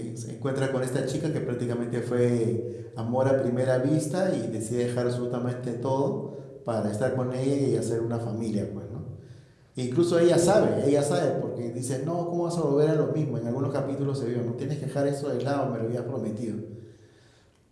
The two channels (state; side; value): identical; both; correlation 1.00